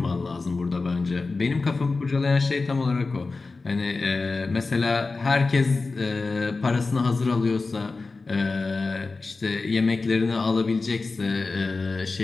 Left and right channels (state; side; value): quieter; right; 3.8 dB